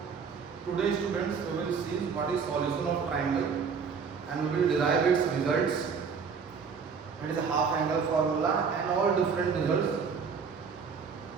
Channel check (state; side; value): quieter; left; 5.9 dB